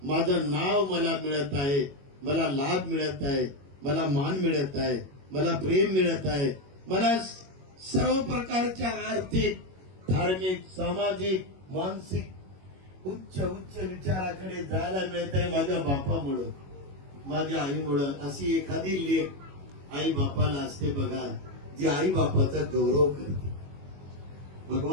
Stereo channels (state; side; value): late; left; 21 ms